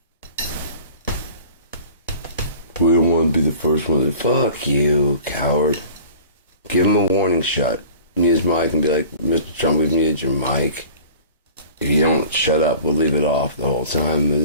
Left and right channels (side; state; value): both; inverted; correlation -0.44